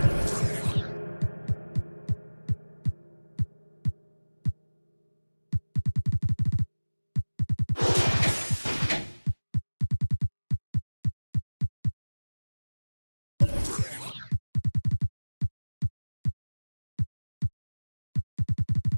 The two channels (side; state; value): both; inverted; correlation -1.00